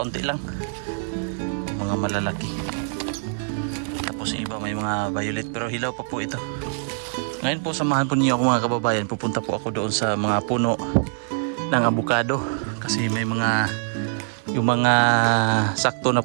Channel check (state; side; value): silent; left; 57 dB below the other